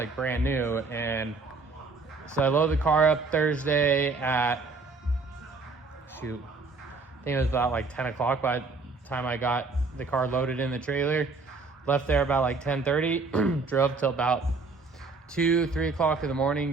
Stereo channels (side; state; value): left; quieter; 4.0 dB